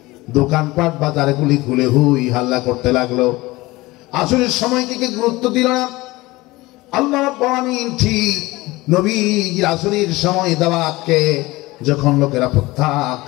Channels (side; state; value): right; quieter; 20.4 dB